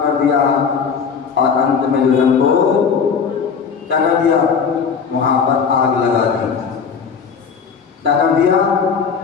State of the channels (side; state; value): right; quieter; 6.1 dB